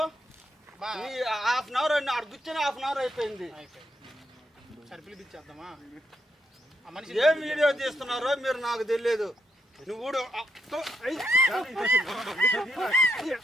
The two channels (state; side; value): normal; both; correlation 0.80